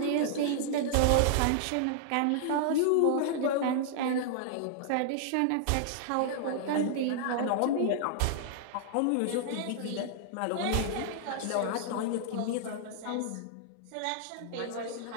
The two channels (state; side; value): different; both; correlation -0.01